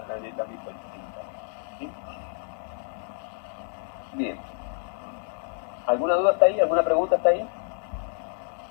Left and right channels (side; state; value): right; silent; digital silence